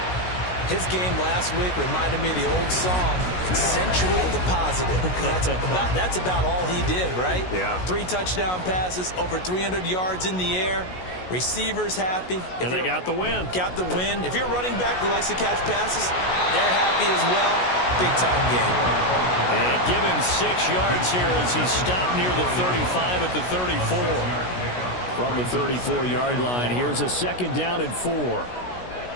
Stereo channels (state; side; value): late; right; 16 ms